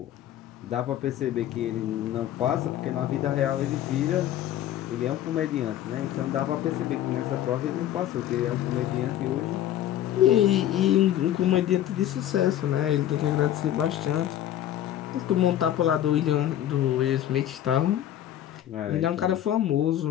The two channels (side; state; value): right; quieter; 11.9 dB